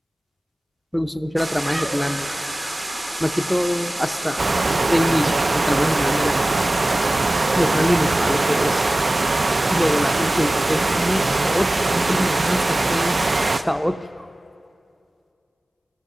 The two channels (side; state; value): both; normal; correlation 0.97